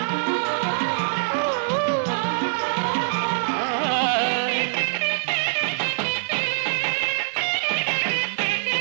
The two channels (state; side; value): silent; left; digital silence